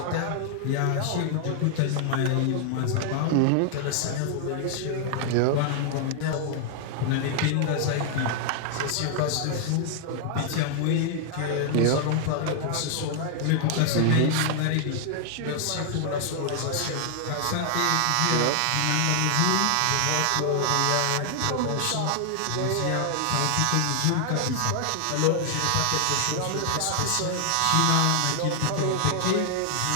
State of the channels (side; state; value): both; different; correlation 0.00